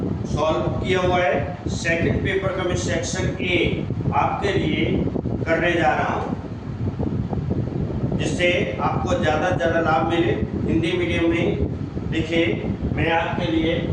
सॉल्व किया हुआ है। सेकंड पेपर का मैं सेक्शन ए आपके लिए करने जा रहा हूँ, जिससे आपको ज़्यादा से ज़्यादा लाभ मिले। हिंदी मीडियम में देखिए, मैं आपके लिए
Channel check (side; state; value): both; identical; correlation 1.00